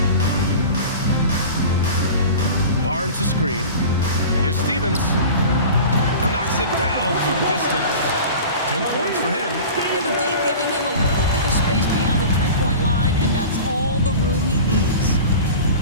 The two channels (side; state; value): both; inverted; correlation -0.36